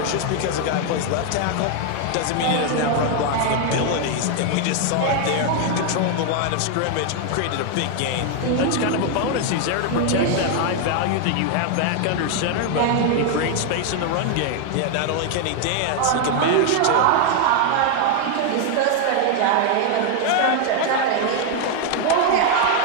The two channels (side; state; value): both; different; correlation 0.00